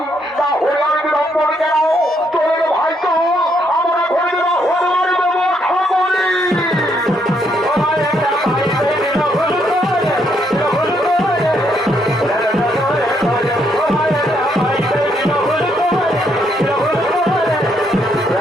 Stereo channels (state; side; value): normal; both; correlation 0.73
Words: তাহলে আমি বিলম্বন কেন? তোর ভাই তো আমরা ঘরে দেওয়া হওয়ার ব্যবস্থা করি।